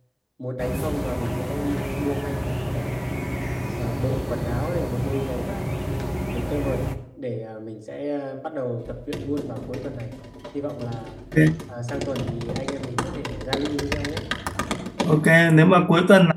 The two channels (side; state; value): both; identical; correlation 1.00